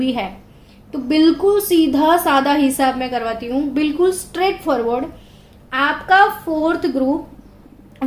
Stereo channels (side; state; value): both; identical; correlation 1.00